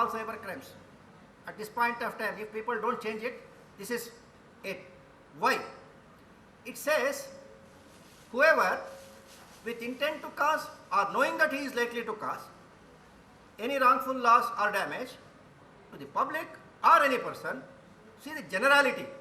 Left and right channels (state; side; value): identical; both; correlation 1.00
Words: cyber crimes. At this point of time, if people don't change it, this is it. Why? It says, whoever with intent to cause or knowing that he is likely to cause any wrongful loss or damage to the public or any person, see the generality,